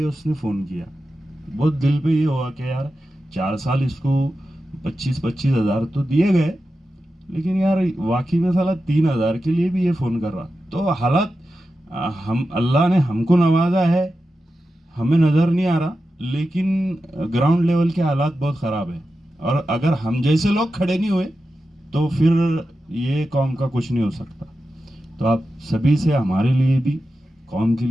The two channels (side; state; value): both; normal; correlation 0.91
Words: उसने फ़ोन किया। बहुत दिल पे ये हुआ कि यार 4 साल इसको 25-25 हज़ार तो दिए गए, लेकिन यार वाकई में साला 3,000 के लिए भी ये फ़ोन कर रहा। तो हालात हम अल्लाह ने हमको नवाजा है, हमें नज़र नहीं आ रहा, लेकिन ग्राउंड लेवल के हालात बहुत ख़राब है। और अगर हम जैसे लोग खड़े नहीं हुए तो फिर ये कौम का कुछ नहीं हो सकता। तो आप सभी से हमारे लिए भी, कौम के